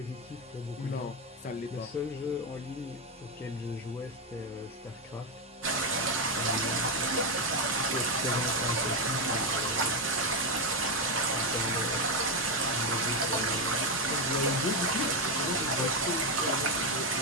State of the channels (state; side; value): normal; both; correlation 0.08